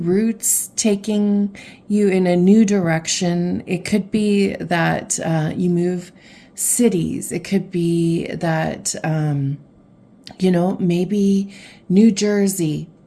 taking you in a new direction. It could be that you move cities. It could be that, maybe New Jersey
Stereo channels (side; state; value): both; identical; correlation 1.00